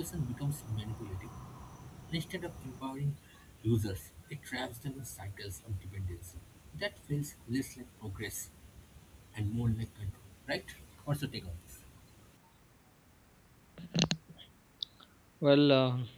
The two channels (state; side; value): identical; both; correlation 1.00